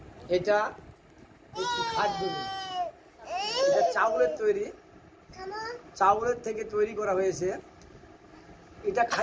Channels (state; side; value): identical; both; correlation 1.00